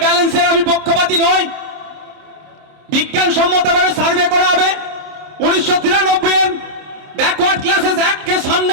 ব্যালেন্সের আমি পক্ষপাতী নই। বিজ্ঞানসম্মতভাবে সার্ভে করা হবে। 1993 এর ব্যাকওয়ার্ড ক্লাসেস অ্যাক্টকে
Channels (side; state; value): left; late; 27 ms